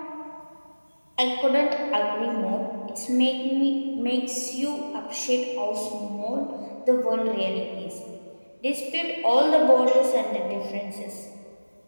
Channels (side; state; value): both; inverted; correlation -1.00